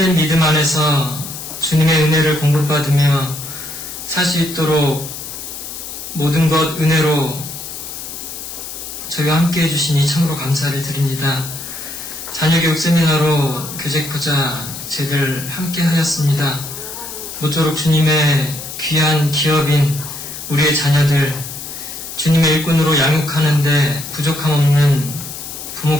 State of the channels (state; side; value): noise; left; hiss, 10 dB below the sound